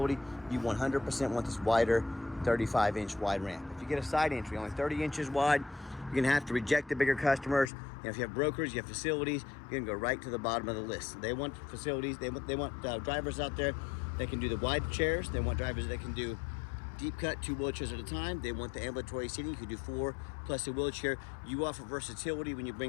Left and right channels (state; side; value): drops out; right; at 7.7 s